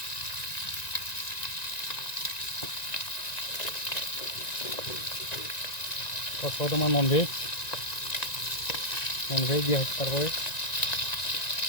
और तुम्हार नन भेज दिया तारपर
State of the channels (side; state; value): right; late; 1.9 ms